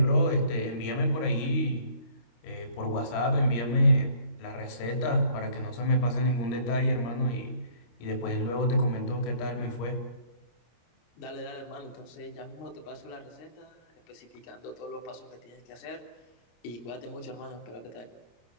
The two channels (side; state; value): right; late; 26 ms